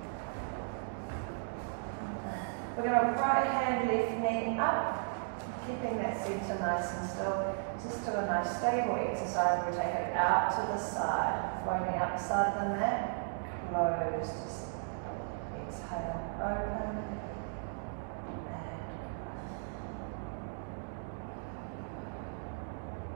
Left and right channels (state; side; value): silent; left; digital silence